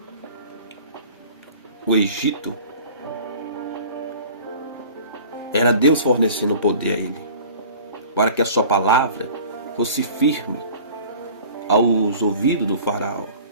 o Egito, era Deus fornecendo poder a ele, para que a sua palavra fosse firme aos ouvidos do faraó,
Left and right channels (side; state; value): both; inverted; correlation -0.44